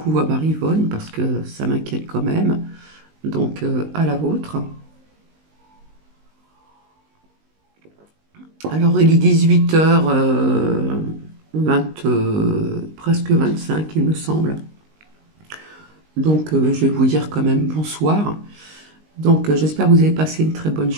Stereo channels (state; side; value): late; left; 19 ms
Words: à Marivonne parce que ça m'inquiète quand même. Donc, à la vôtre. Alors, il est 18h, presque 25, il me semble. Donc, je vais vous dire quand même bonsoir. Donc, j'espère que vous avez passé une très bonne